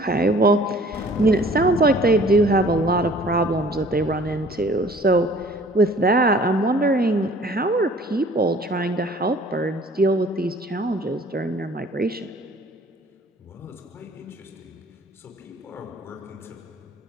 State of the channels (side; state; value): both; normal; correlation 0.52